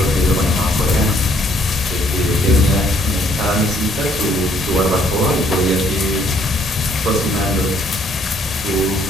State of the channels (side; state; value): both; normal; correlation 0.65